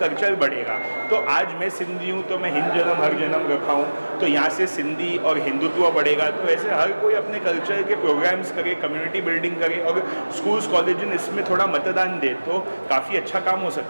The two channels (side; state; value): both; inverted; correlation -1.00